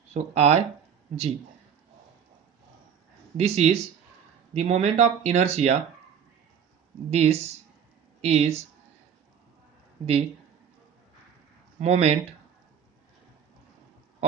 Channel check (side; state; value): left; quieter; 7.9 dB